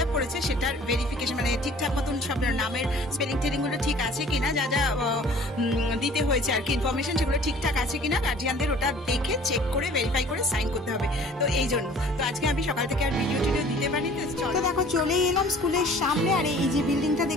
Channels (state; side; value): normal; both; correlation 0.50